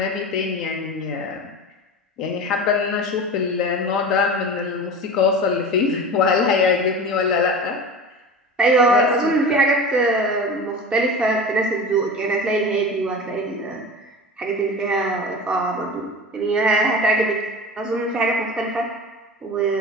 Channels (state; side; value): normal; both; correlation 0.32